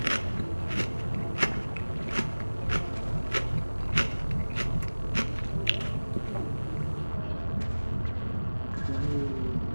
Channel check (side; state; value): both; inverted; correlation -1.00